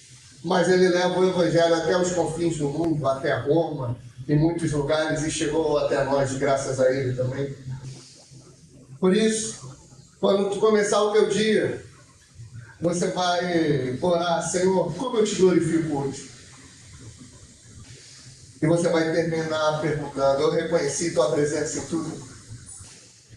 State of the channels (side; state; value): both; identical; correlation 1.00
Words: mas ele leva o evangelho até os confins do mundo, até Roma, em muitos lugares, e chegou até nós, graças a ele também. Por isso, quando tu começar o teu dia, você vai orar: Senhor, como eu te glorifico hoje? E você vai terminar perguntando: eu reconheci tua presença em tudo.